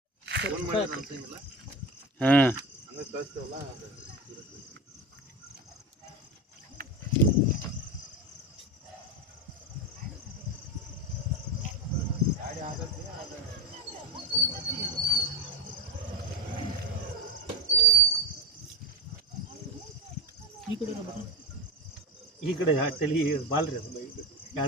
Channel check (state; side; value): normal; both; correlation 0.20